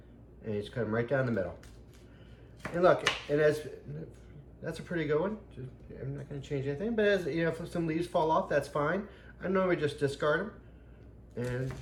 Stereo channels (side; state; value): both; identical; correlation 1.00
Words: And you just cut them right down the middle. And look, that's a pretty good one. I'm not going to change anything, but as you know, if some leaves fall off, that's fine. I normally just discard them,